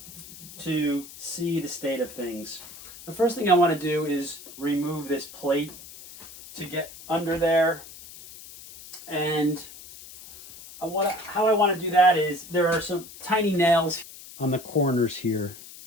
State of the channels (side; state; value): left; noise; hiss, 17 dB below the sound